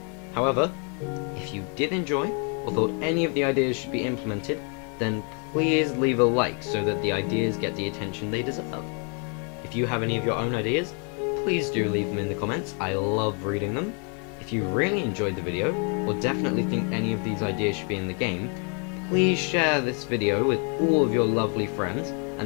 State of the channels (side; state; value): right; quieter; 38.3 dB